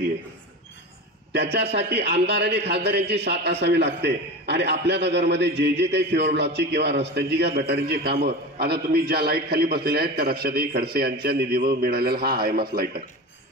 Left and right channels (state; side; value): normal; both; correlation 0.29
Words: आहे, त्याच्यासाठी आमदार आणि खासदार यांची साथ असावी लागते। आणि आपल्या नगरमध्ये जे काही फ्युअर ब्लॉकची किंवा रस्त्यांची किंवा गटारींची कामं, आता तुम्ही ज्या लाईट खाली बसलेल्या आहेत त्या रक्षाताई खडसे यांच्या निधीवर मिळालेला हा हायमास लाईट आहे।